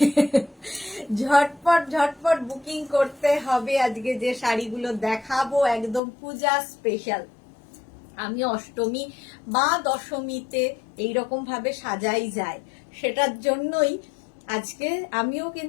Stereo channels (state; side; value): drops out; right; at 6.0 s